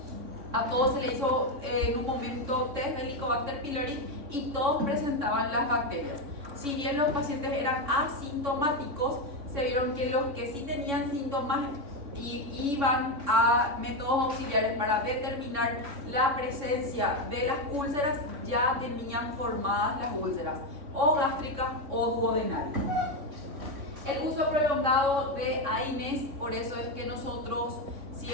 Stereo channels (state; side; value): late; left; 3.6 ms